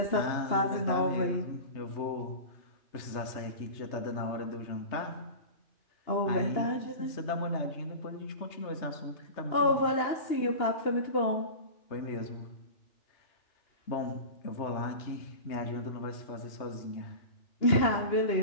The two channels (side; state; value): right; late; 2.9 ms